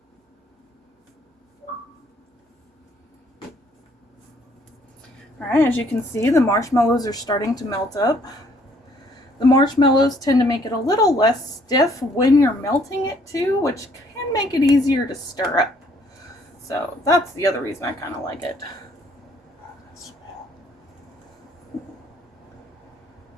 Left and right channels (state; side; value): normal; both; correlation 0.63